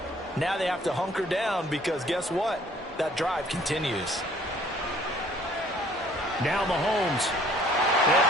Now they have to hunker down because guess what? That drive continues. Now Mahomes. And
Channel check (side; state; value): both; normal; correlation 0.58